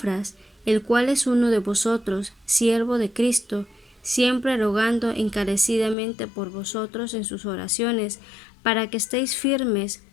el cual es uno de vosotros, siervo de Cristo, siempre rogando encarecidamente por vosotros en sus oraciones, para que estéis firmes,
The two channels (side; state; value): right; drops out; at 6.0 s